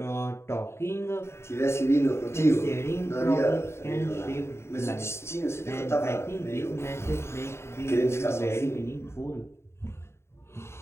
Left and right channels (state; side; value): late; right; 0.13 ms